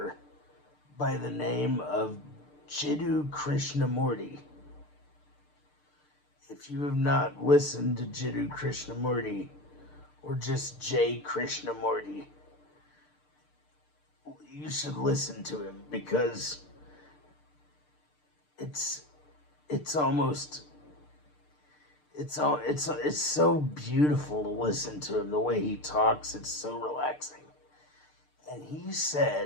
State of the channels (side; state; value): right; late; 6.7 ms